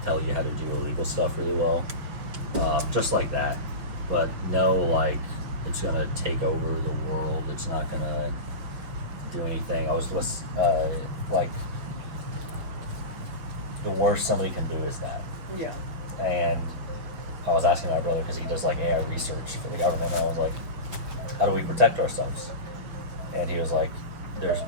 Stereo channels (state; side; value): late; left; 6.1 ms